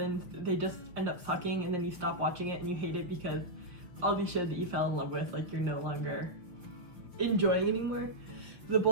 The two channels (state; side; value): late; left; 6.0 ms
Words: they just end up sucking and then you stop watching it and you hate it because all these shows that you fell in love with, you're no longer enjoying anymore. The